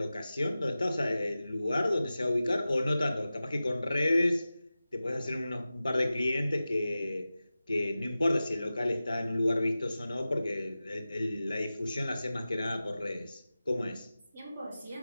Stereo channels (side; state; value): both; inverted; correlation -0.95